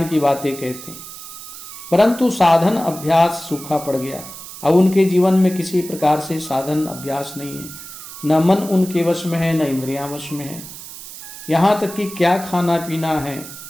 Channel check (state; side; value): noise; right; hiss, 13 dB below the sound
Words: की बातें कहते हैं, परंतु साधन अभ्यास सूखा पड़ गया। अब उनके जीवन में किसी प्रकार से साधन अभ्यास नहीं है, न मन उनके वश में है न इंद्रियां वश में है। यहाँ तक कि क्या खाना पीना है,